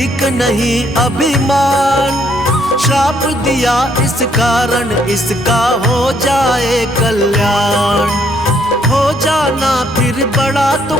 नहीं अभिमान, श्राप दिया इस कारण इसका हो जाए कल्याण। हो जाना फिर बड़ा तो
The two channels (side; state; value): both; normal; correlation 0.69